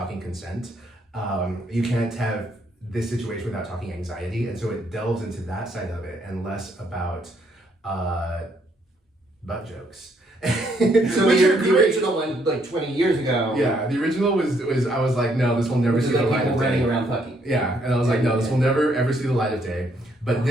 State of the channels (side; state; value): both; normal; correlation 0.71